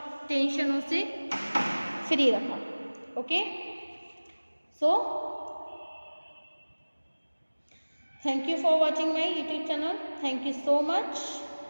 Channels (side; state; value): both; inverted; correlation -1.00